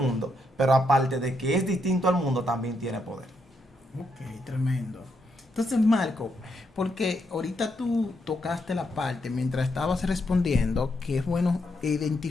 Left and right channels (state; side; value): normal; both; correlation 0.79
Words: pero aparte de que es distinto al mundo, también tiene poder. Ok, tremendo. Entonces, Marco, porque ahorita tú tocaste la parte mientras estabas respondiendo que es bueno